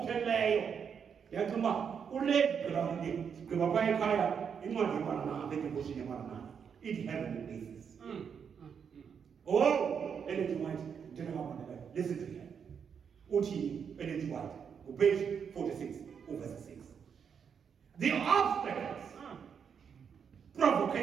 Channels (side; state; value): left; quieter; 7.0 dB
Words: play. Yakuma, who led the Gavai Kaya in one of the devotion in one it heavenly places. Oh, energy white, general listen to him. Uti, energy white, page 46, verse 6. The obstacles,